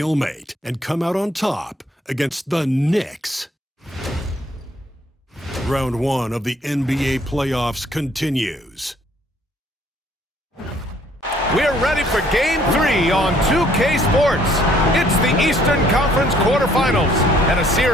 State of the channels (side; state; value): both; normal; correlation 0.63